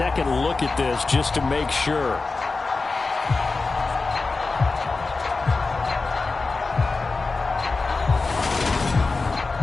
look at this just to make sure.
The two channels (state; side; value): quieter; right; 3.9 dB